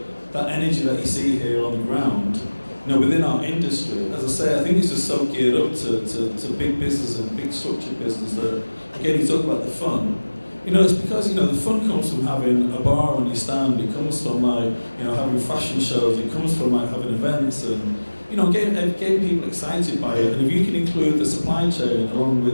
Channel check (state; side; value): inverted; both; correlation -1.00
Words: energy that you see here on the ground, you know, within our industry, as I say, I think it's just so geared up to big business and big structured business that, again, you talk about the fun. You know, it's because, you know, the fun comes from having a bar on your stand, it comes from, like, you know, having fashion shows, it comes from, like, having events and, you know, getting people excited by it. And if you can include the supply chain along